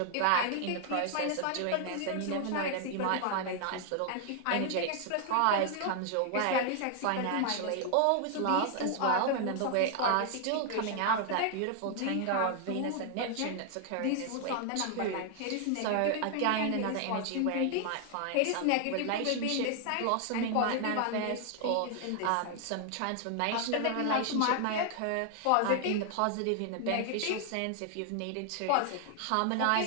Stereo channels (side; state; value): both; different; correlation 0.00